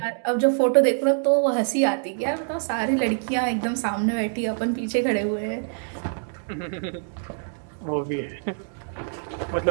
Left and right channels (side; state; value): left; silent; 60 dB below the other